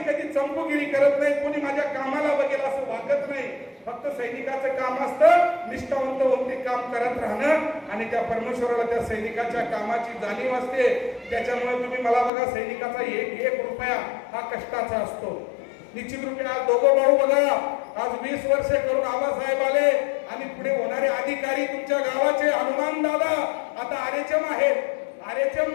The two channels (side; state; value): right; drops out; at 12.3 s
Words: कधी चंपूगिरी करत नाही. कोणी माझ्या कामाला बघेल असं वागत नाही. फक्त सैनिकाचं काम असतं निष्ठावंत होऊन ते काम करत राहणं आणि त्या परमेश्वराला त्या सैनिकाच्या कामाची जाणीव असते. त्याच्यामुळे तुम्ही मला बघा, सैनिकाचा एक रुपया हा कष्टाचा असतो. निश्चित रूपे आज दोघं भाऊ बघा, आज 20 वर्षे करून आबासाहेब आले आणि पुढे होणारे अधिकारी तुमच्या गावाचे हनुमान दादा आता आरेचम आहेत. आरेचम